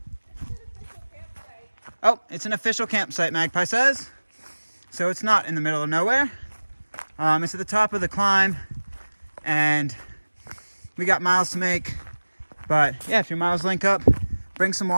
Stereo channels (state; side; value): inverted; both; correlation -1.00